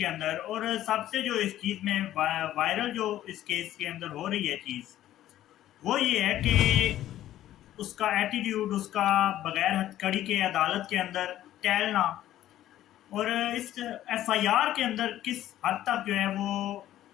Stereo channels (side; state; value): right; quieter; 13.1 dB